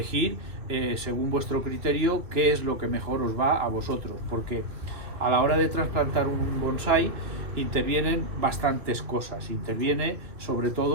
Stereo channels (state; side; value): late; left; 2.6 ms